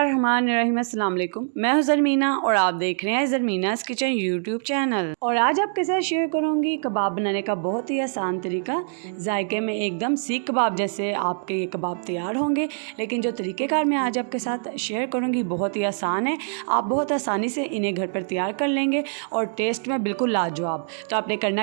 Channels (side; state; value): left; silent; digital silence